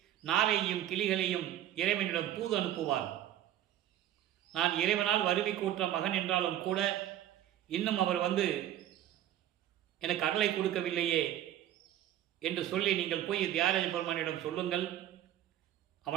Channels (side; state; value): left; quieter; 12.1 dB